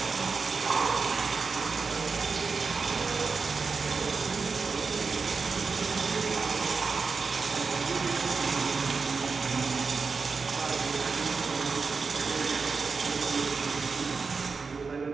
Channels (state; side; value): quieter; left; 4.8 dB